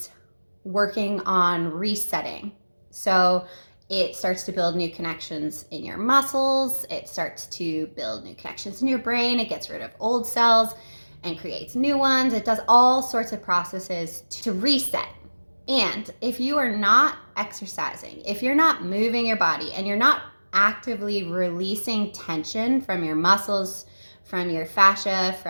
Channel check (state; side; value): inverted; both; correlation -1.00